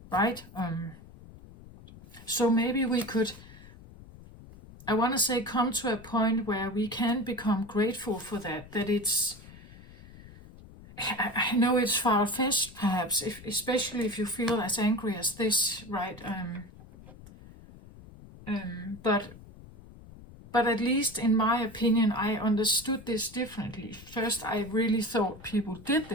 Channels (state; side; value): noise; left; rumble, 19 dB below the sound